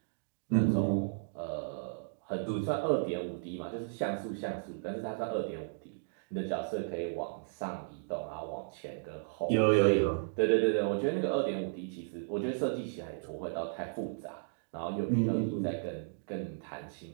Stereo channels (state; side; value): silent; left; digital silence